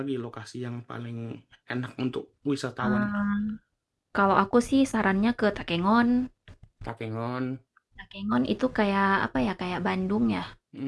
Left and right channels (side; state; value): both; identical; correlation 1.00